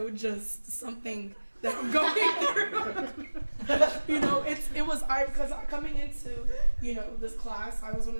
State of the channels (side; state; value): both; inverted; correlation -1.00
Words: just something that I'm going through. You know, because coming into, you know, this class, I was one